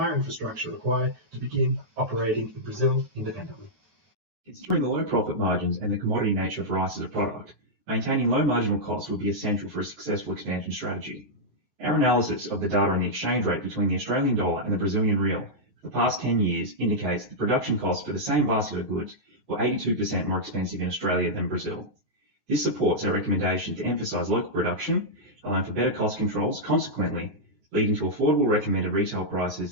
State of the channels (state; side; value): late; left; 9.5 ms